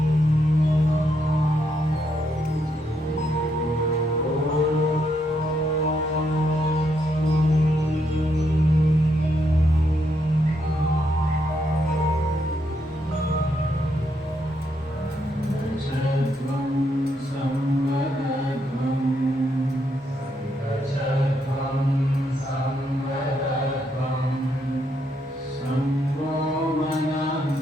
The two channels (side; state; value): both; normal; correlation 0.77